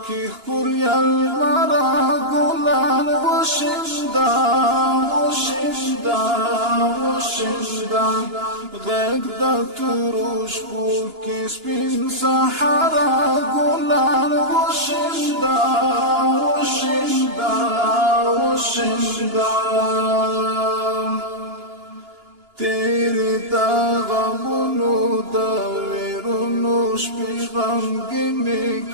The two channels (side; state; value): left; late; 2.9 ms